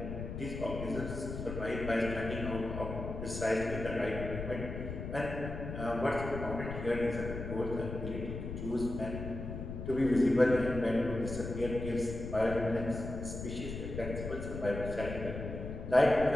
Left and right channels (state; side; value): noise; left; rumble, 7 dB below the sound